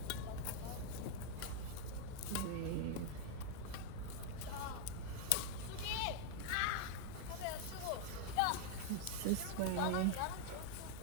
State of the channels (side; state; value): both; different; correlation 0.00